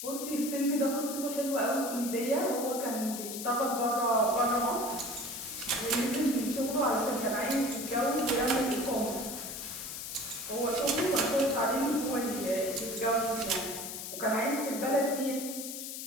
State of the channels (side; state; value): left; noise; hiss, 7 dB below the sound